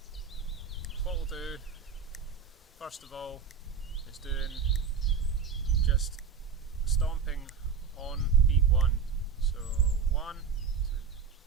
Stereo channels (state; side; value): quieter; left; 6.0 dB